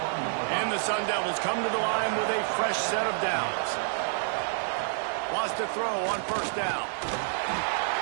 And the Sun Devils come to the line with a fresh set of downs. Wants to throw on first down.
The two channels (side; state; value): left; silent; 59 dB below the other